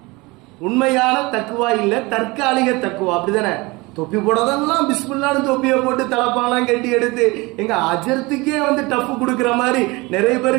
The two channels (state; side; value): quieter; left; 23.9 dB